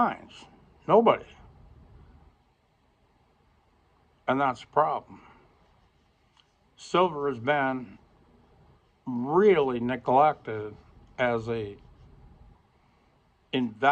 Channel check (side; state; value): both; identical; correlation 1.00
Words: Nobody. And that's the problem. Silver has been really neglected as a